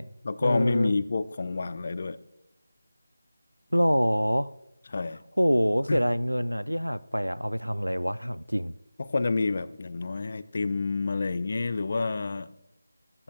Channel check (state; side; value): inverted; both; correlation -0.98